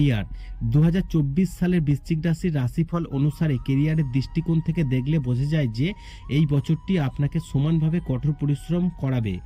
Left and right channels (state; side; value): identical; both; correlation 1.00